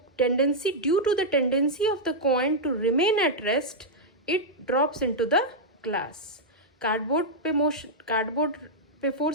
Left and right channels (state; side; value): normal; both; correlation -0.06